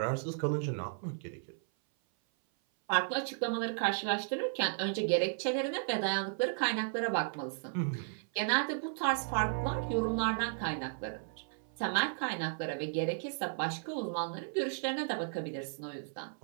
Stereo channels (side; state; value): left; silent; 55 dB below the other